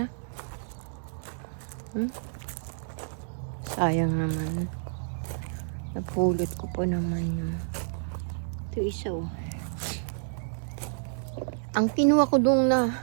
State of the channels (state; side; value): silent; left; 58 dB below the other